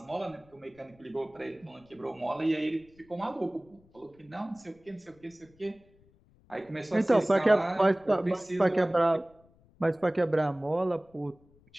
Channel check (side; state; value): left; noise; rumble, 30 dB below the sound